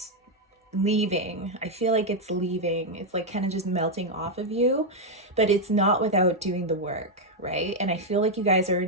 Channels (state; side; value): normal; both; correlation 0.01